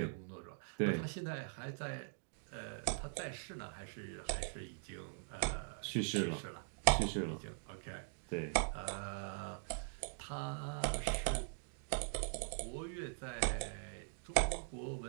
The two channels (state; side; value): silent; left; digital silence